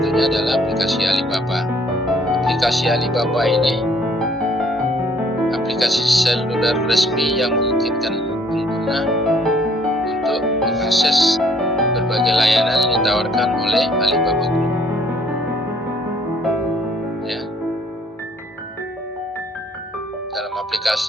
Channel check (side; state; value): both; normal; correlation 0.62